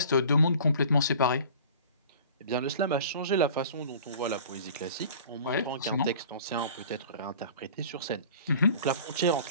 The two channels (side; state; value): both; inverted; correlation -0.44